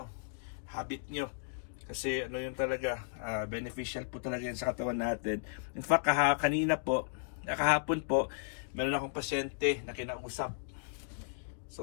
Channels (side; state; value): right; silent; digital silence